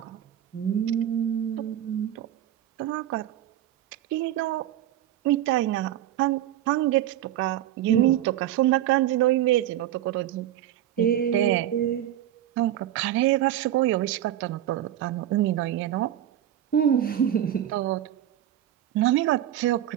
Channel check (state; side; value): quieter; left; 12.1 dB